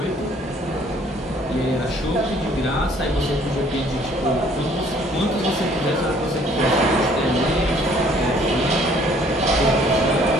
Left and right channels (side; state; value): both; normal; correlation 0.59